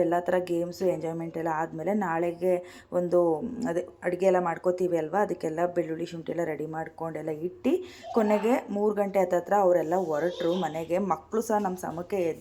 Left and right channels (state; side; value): identical; both; correlation 1.00